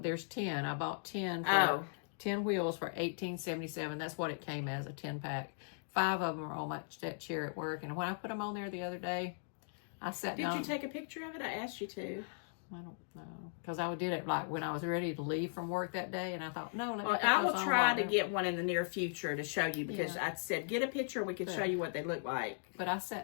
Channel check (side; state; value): right; silent; digital silence